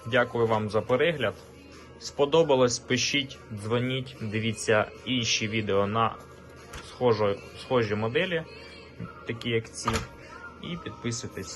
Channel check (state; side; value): identical; both; correlation 1.00